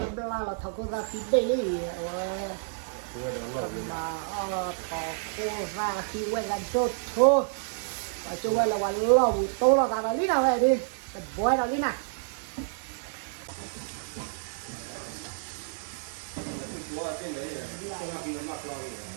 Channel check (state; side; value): silent; left; digital silence